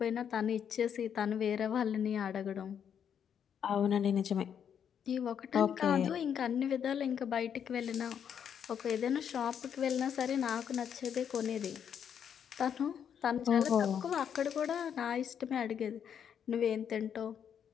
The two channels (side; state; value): right; quieter; 8.2 dB